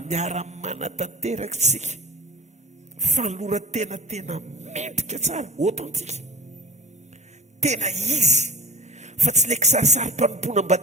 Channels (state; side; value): normal; both; correlation 0.41